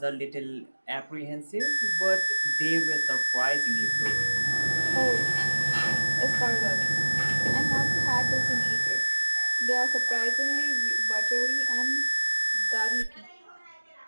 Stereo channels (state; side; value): inverted; both; correlation -1.00